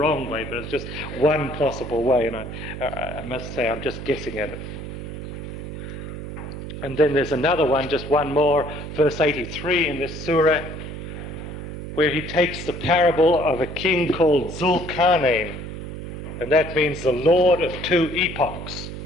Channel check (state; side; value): noise; right; hum, 8 dB below the sound